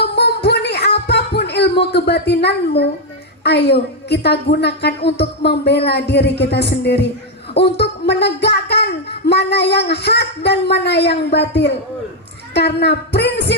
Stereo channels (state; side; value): normal; both; correlation 0.02